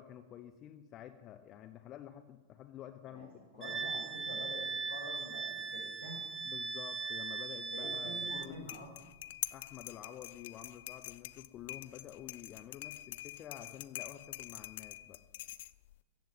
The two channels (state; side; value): normal; both; correlation 0.47